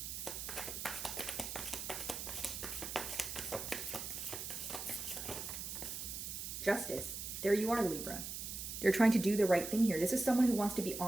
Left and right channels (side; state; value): right; noise; hiss, 6 dB below the sound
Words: Justice. There you are, Libra. They're trying to do the right thing here. This is someone who wants to be